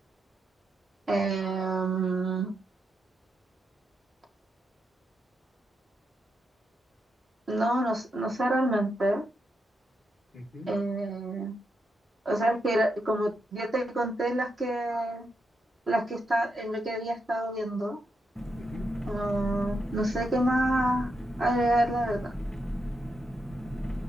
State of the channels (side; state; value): both; normal; correlation 0.83